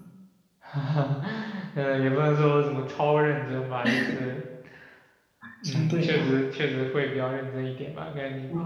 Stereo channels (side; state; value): both; identical; correlation 1.00